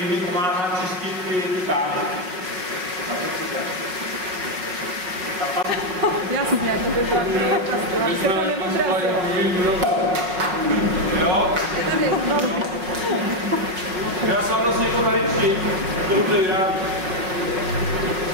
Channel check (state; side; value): late; left; 5.4 ms